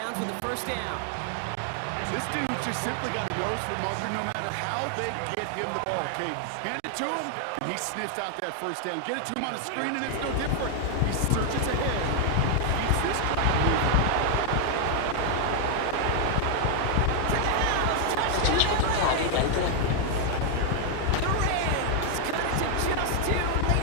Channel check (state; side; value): different; both; correlation 0.00